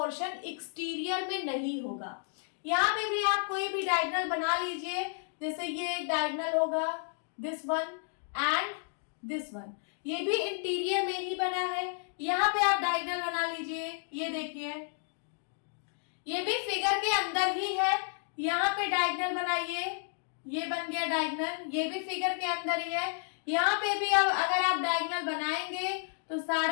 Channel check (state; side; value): silent; right; 57 dB below the other